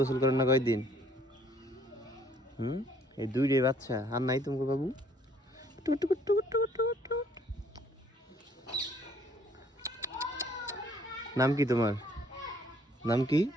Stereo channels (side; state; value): both; normal; correlation 0.62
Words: করেন না কয়দিন এই দুইটাই বাচ্চা আর নাই তোমাকে বাবু নাম কি তোমার নাম কি